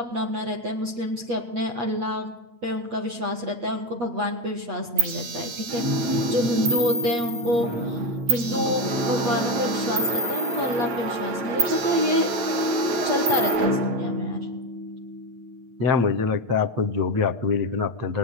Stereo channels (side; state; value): left; late; 8.5 ms